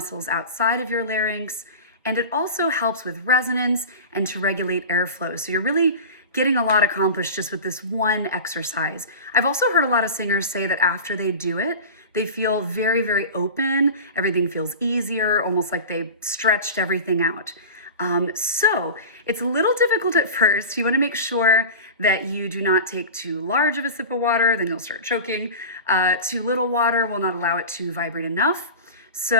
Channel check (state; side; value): inverted; both; correlation -0.31